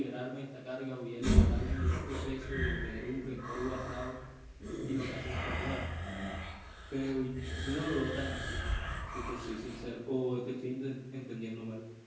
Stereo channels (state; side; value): identical; both; correlation 1.00